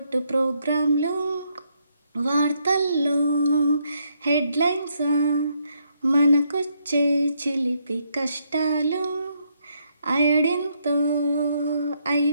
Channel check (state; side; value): inverted; both; correlation -0.75